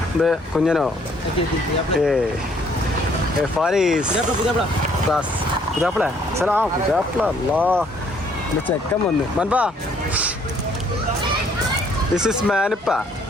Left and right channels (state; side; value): normal; both; correlation 0.64